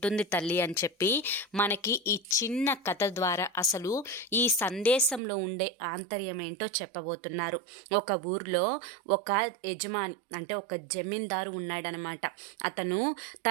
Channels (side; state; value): left; drops out; at 5.2 s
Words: తల్లి అని చెప్పి మనకి ఈ చిన్న కథ ద్వారా అసలు ఈ సందేశంలో ఉండే ఆంతర్యం ఏంటో చెప్పబోతున్నారు. ఒక ఊర్లో ఒక యజమాని అంటే ఒక జమీందారు ఉన్నాడనమాట. అతను